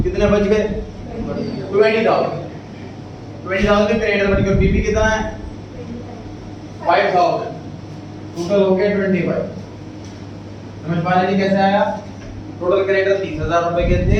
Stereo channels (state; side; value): identical; both; correlation 1.00